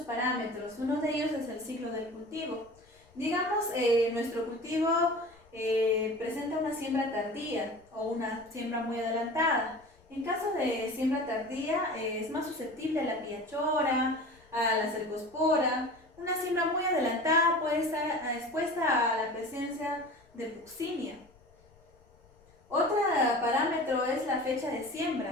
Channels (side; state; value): left; noise; rumble, 29 dB below the sound